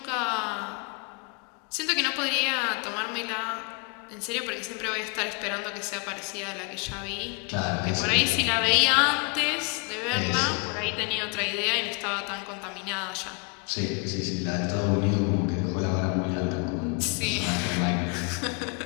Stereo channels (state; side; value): quieter; right; 34.2 dB